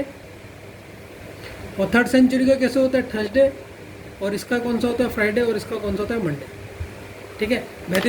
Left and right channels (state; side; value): identical; both; correlation 1.00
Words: और थर्ड सेंचुरी का कैसे होता है, थर्सडे। और इसका कौन सा होता है, फ्राइडे। और इसका कौन सा होता है, मंडे। ठीक है,